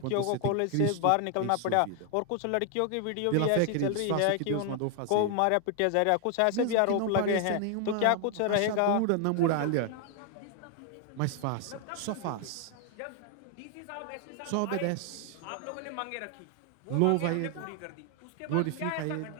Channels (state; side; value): different; both; correlation 0.00